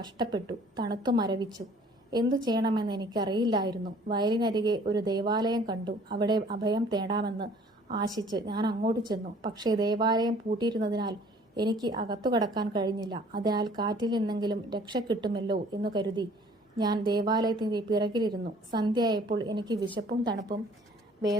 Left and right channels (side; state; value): both; normal; correlation 0.54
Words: തണുത്തു മരവിച്ചു. എന്തു ചെയ്യണമെന്ന് എനിക്കറിയില്ലായിരുന്നു. വയലിനരികെ ഒരു ദേവാലയം കണ്ടു. അവിടെ അഭയം തേടാമെന്ന് ആശിച്ച് ഞാൻ അങ്ങോട്ട് ചെന്നു. പക്ഷേ ദേവാലയം പൂട്ടിയിരുന്നതിനാൽ എനിക്ക് അകത്തു കടക്കാൻ കഴിഞ്ഞില്ല. അതിനാൽ കാറ്റിൽ നിന്നെങ്കിലും രക്ഷ കിട്ടുമല്ലോ എന്ന് കരുതി ഞാൻ ദേവാലയത്തിൻ്റെ പിറകിലിരുന്നു. സന്ധ്യയായപ്പോൾ എനിക്ക് വിശപ്പും തണുപ്പും